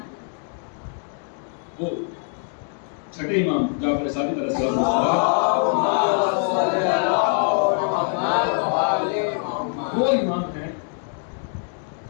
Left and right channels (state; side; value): silent; right; 56 dB below the other